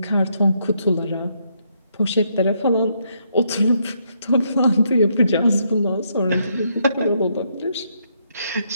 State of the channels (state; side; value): inverted; both; correlation -0.75